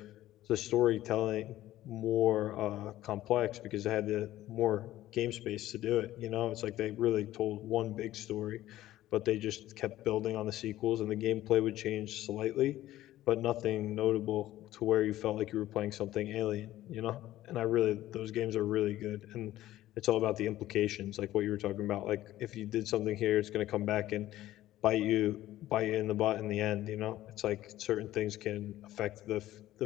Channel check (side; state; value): right; quieter; 14.6 dB